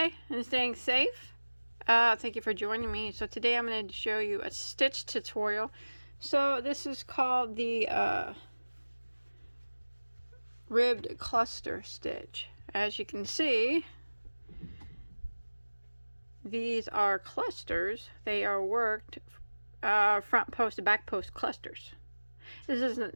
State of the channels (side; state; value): both; inverted; correlation -1.00